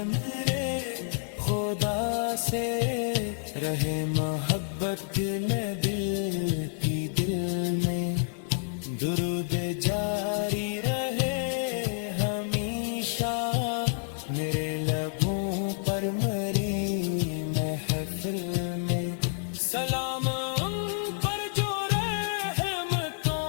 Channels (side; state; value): right; silent; digital silence